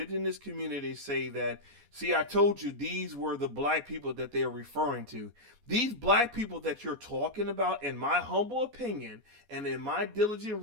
community say that, see, I told you these were the black people that they're referring to. These black people that you're talking about, in my humble opinion and in my diligent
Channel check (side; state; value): left; late; 14 ms